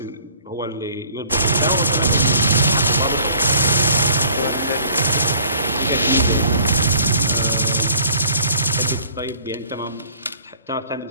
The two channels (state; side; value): inverted; both; correlation -0.55